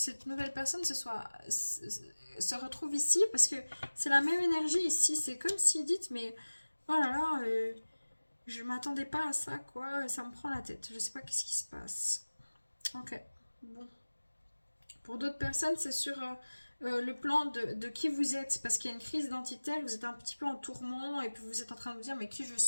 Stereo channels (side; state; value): both; inverted; correlation -1.00